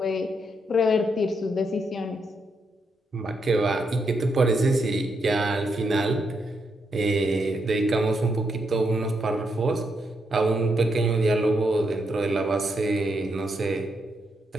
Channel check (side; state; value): both; normal; correlation 0.80